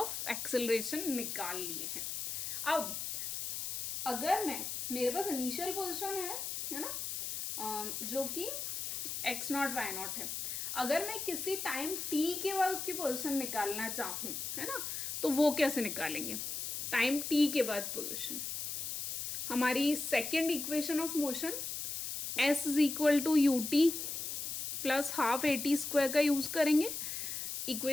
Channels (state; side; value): noise; left; hiss, 4 dB below the sound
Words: एक्सेलरेशन निकाल लिए हैं। अब अगर मेरे पास इनिशियल पोजीशन है ना, जो कि x नॉट y नॉट है, अगर मैं किसी टाइम t के बाद उसकी पोजीशन निकालना चाहूँ, है ना, तो वो कैसे निकालेंगे, टाइम t के बाद पोजीशन, हमारी second equation of motion s is equal to ut plus half A T square का यूज़ करेंगे।